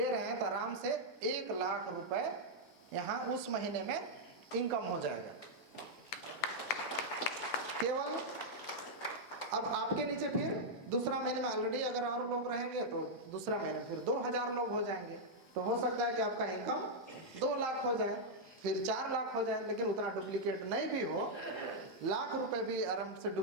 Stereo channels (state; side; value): normal; both; correlation -0.04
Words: रहे हैं तो आराम से 1 लाख रुपए यहाँ उस महीने में इनकम हो जाएगा। केवल अब आपके नीचे फिर दूसरा महीने में ऑलरेडी अगर और लोग रहेंगे तो दूसरा महीने फिर 2000 लोग हो जाएंगे। तो हो सकता है कि आपका इनकम 2 लाख हो जाए, फिर 4 लाख हो जाए। लेकिन उतना डुप्लीकेट नहीं भी हो, लाख रुपए भी आराम से